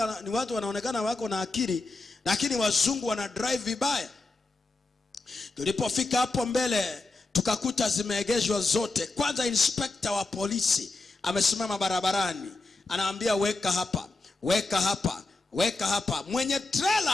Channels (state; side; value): quieter; right; 3.3 dB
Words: ni watu wanaonekana wako na akili, lakini wazungu wana drive vibaya. Tulipofika hapo mbele, tukakuta zimeegeshwa zote. Kwanza inspector wa polisi amesimama barabarani, anaambia weka hapa. Mwenye